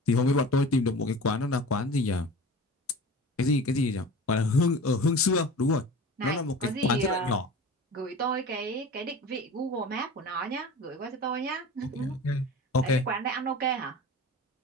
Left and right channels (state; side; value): normal; both; correlation 0.36